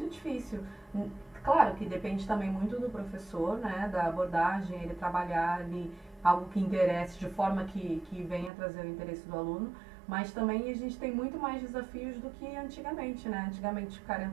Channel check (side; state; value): left; drops out; at 8.5 s